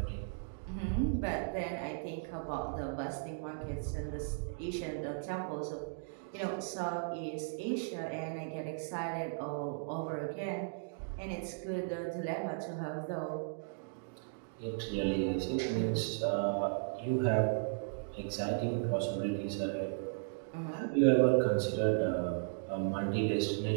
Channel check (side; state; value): left; silent; digital silence